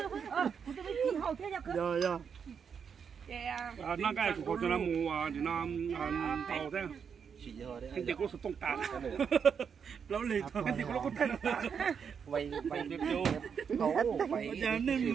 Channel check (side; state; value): left; quieter; 6.8 dB